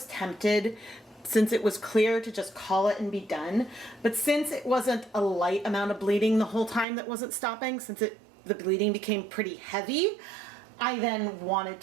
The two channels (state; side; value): drops out; left; at 6.9 s